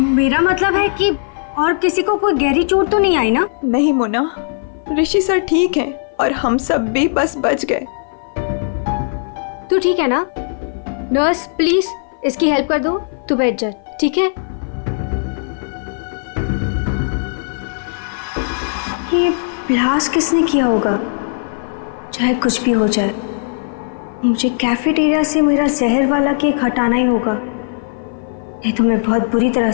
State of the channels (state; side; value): silent; right; 56 dB below the other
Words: मतलब है कि और किसी को कोई गहरी चोट तो नहीं आई ना? नहीं मोना, ऋषि सर ठीक हैं और हम सब भी बस बच गए। तू ठीक है ना? नर्स प्लीज इसकी हेल्प कर दो, तू बैठ जा, ठीक है? ये ब्लास्ट किसने किया होगा? चाहे कुछ भी हो जाए, मुझे कैफेटेरिया से मेरा जहर वाला केक हटाना ही होगा, नहीं तो मैं बहुत बुरी तरह